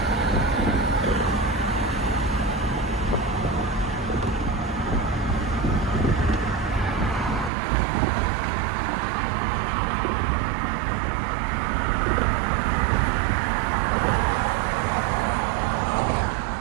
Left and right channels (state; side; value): drops out; left; at 7.5 s